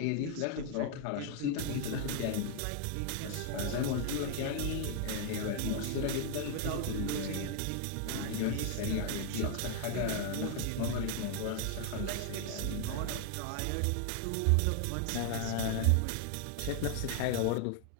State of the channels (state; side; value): different; both; correlation 0.00